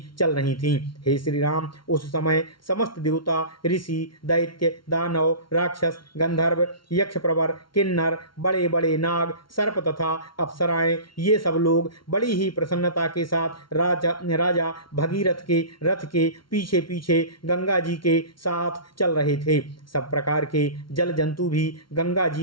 चल रही थीं। हे श्री राम, उस समय समस्त देवता, ऋषि, दैत्य, दानव, राक्षस, गंधर्व, यक्ष प्रवर, किन्नर, बड़े बड़े नाग, सर्प तथा अप्सराएं ये सब लोग बड़ी ही प्रसन्नता के साथ राजा भगीरथ के रथ के पीछे पीछे गंगा जी के साथ चल रहे थे। सब प्रकार के जल जंतु भी गंगा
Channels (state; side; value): late; right; 0.74 ms